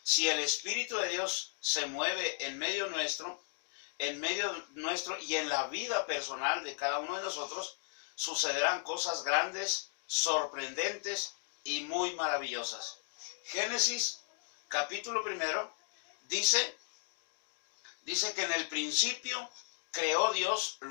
Si el Espíritu de Dios se mueve en medio nuestro y en la vida personal de cada uno de nosotros, sucederán cosas grandes, sorprendentes y muy maravillosas. Génesis capítulo 1 dice que en el principio creó Dios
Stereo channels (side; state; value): right; silent; 54 dB below the other